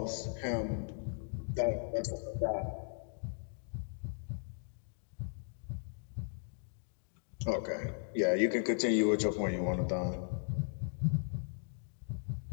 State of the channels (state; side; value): silent; right; digital silence